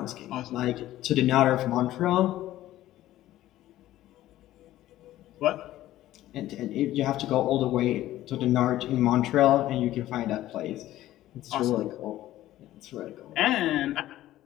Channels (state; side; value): quieter; right; 14.5 dB